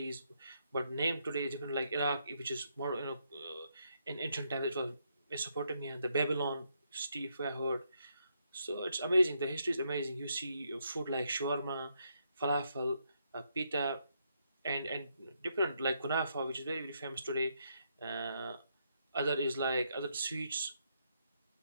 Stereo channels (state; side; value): inverted; both; correlation -0.77